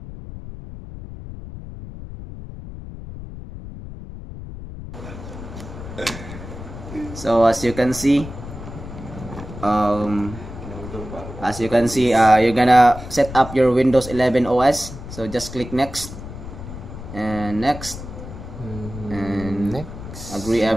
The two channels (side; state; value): left; noise; rumble, 11 dB below the sound